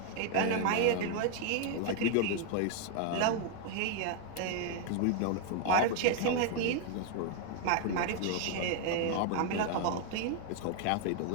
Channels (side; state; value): both; different; correlation 0.01